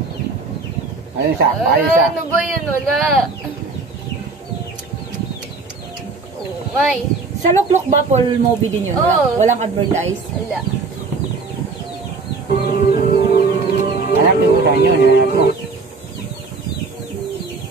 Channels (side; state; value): left; quieter; 4.1 dB